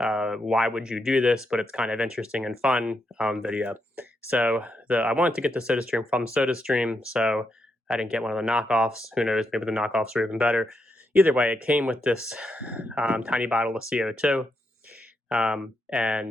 why would you do this, but it's kind of interesting and fun video. So I wanted to get the SodaStream from SodaStream, so I didn't get one of the knockoffs. Who knows, maybe the knockoffs are even better. Either way, it came with this tiny bottle of CO2,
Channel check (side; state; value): both; normal; correlation 0.82